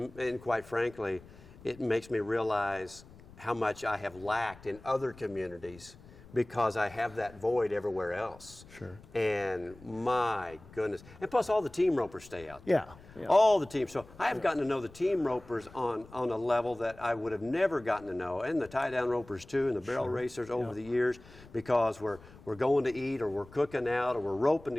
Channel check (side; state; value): left; noise; rumble, 21 dB below the sound